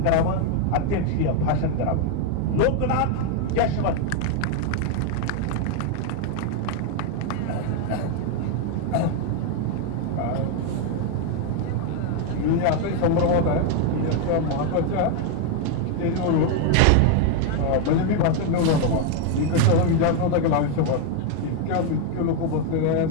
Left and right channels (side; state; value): both; different; correlation 0.01